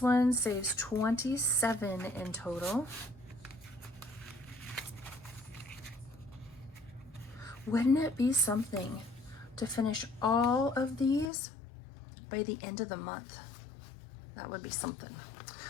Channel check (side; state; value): right; drops out; at 11.3 s